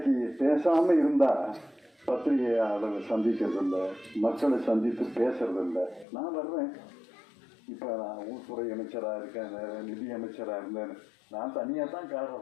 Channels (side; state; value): right; drops out; at 6.1 s